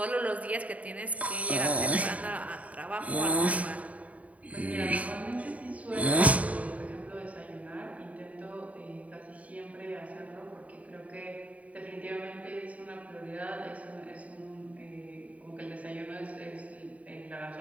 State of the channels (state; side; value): late; left; 0.069 ms